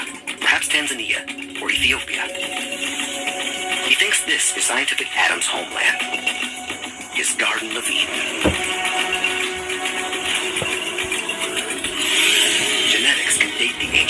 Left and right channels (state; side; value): identical; both; correlation 1.00